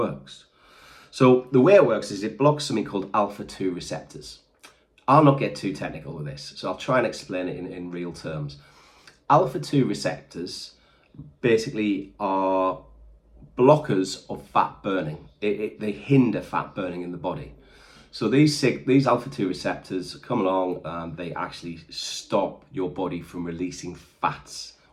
So the way it works is it blocks something called alpha-2 receptors. I'll not get too technical with this, so I'll try and explain it in real terms. Alpha-2 receptors basically are blockers of fat burning. They hinder fat burning in the body. So these alpha-2 receptors come along and they actually stop your body from releasing fats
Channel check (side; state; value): both; identical; correlation 1.00